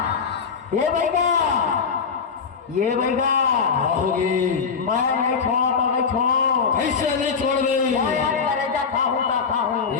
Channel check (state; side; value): quieter; right; 5.8 dB